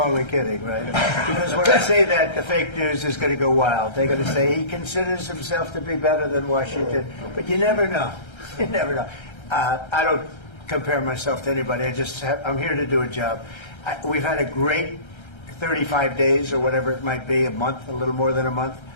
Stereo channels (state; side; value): late; right; 1.3 ms